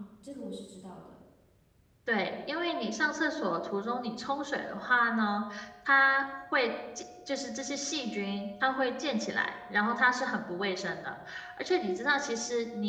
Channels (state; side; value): identical; both; correlation 1.00